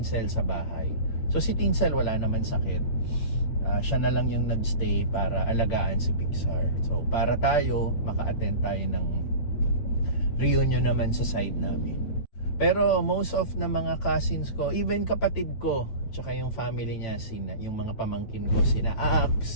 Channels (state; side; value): late; right; 8.9 ms